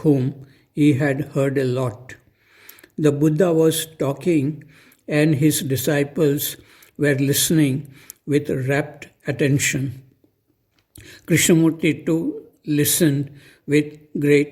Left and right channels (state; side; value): identical; both; correlation 1.00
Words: he had heard a lot. The Buddha was talking and his disciples were listening with rapt attention. Krishnamurti too listened with